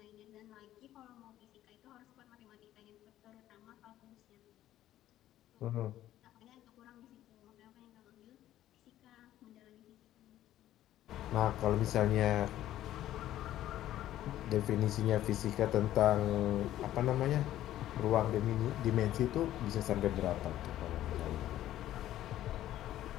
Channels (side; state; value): right; quieter; 13.2 dB